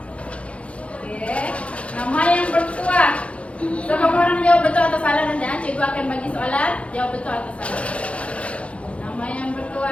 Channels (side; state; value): right; late; 0.062 ms